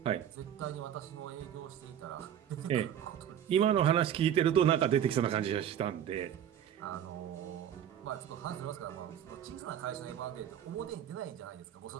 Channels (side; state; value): left; quieter; 9.8 dB